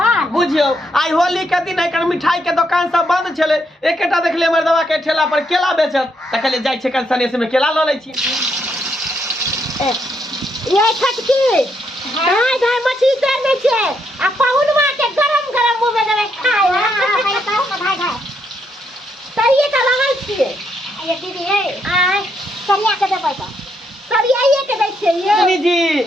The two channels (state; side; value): normal; both; correlation 0.77